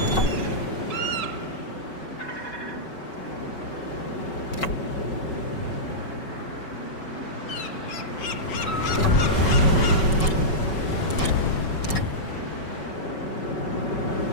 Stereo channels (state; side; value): late; right; 5.3 ms